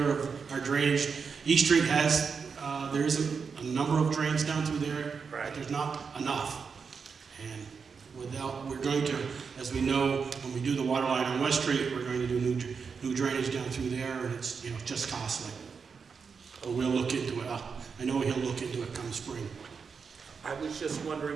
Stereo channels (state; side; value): quieter; left; 5.7 dB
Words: of our drainage. East Street has, there's a number of drains down through there, but there's not enough. And we're going to, as we know, when we do the water line on West Street, we're going to do new drainage down through there, and it's, just costly. But we'll look into it. I know he'll look into it come spring. I was just